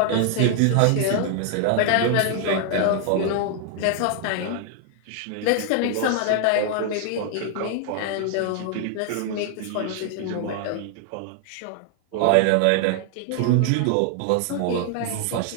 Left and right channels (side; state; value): both; different; correlation 0.00